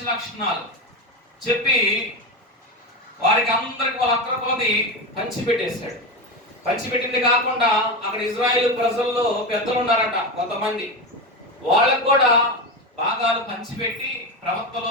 లక్షణాలు చెప్పి వారికి అందరికి వాళ్ళ అక్కర కొలది పంచిపెట్టేశాడు. పంచిపెట్టింది కాకుండా అక్కడ ఇజ్రాయేల్ ప్రజల్లో పెద్దలు ఉన్నారట కొంతమంది, వాళ్ళకు కూడా భాగాలు పంచిపెట్టి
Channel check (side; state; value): both; normal; correlation 0.18